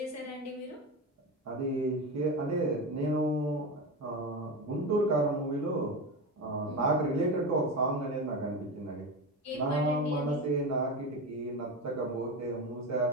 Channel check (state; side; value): normal; both; correlation 0.21